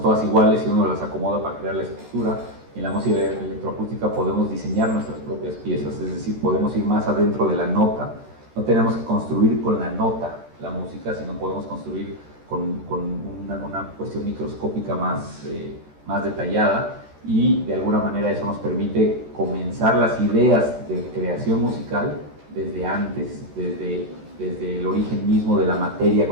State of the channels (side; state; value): left; late; 13 ms